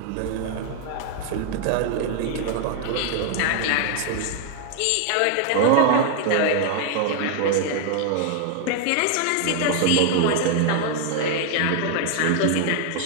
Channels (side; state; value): both; different; correlation 0.00